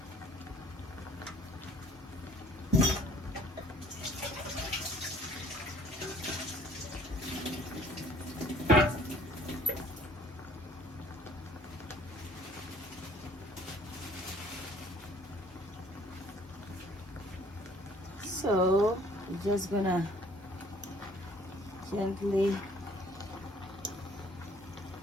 So I'm just gonna gently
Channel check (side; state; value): both; normal; correlation 0.57